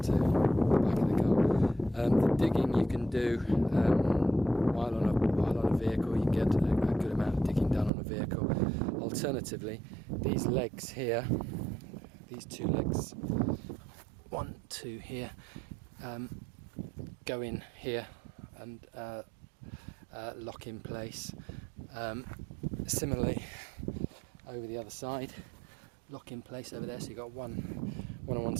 to the back of the car. The digging you can do while on a vehicle. You can get a good amount of digging done on a vehicle. Alternatively, these legs here, these two legs, 1, 2 here, go in here and lock in place. Similarly, over the other side, lock in place over there, so you've got one on one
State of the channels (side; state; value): left; drops out; at 7.9 s